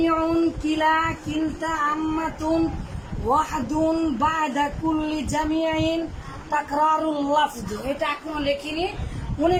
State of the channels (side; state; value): both; identical; correlation 1.00